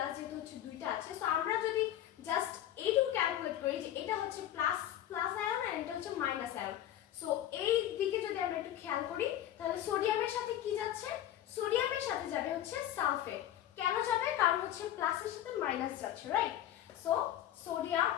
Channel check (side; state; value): right; quieter; 12.0 dB